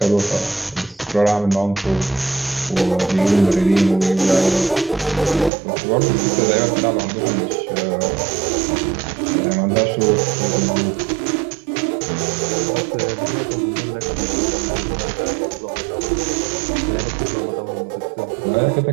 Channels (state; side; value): drops out; left; at 5.5 s